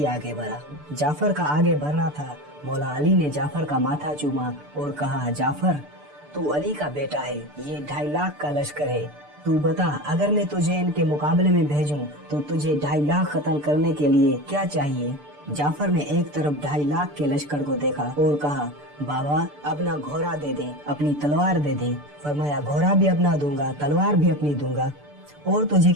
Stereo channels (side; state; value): left; late; 6.8 ms